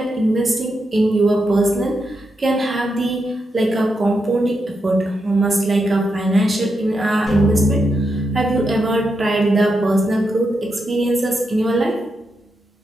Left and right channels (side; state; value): both; normal; correlation 0.84